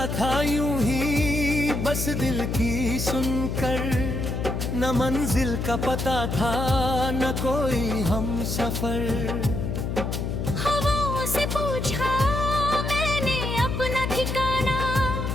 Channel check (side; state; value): left; noise; hum, 2 dB below the sound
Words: था यूं ही बस दिल की सुनकर, न मंजिल का पता था न कोई हम सफर। हवाओं से पूछा मैंने अपना ठिकाना,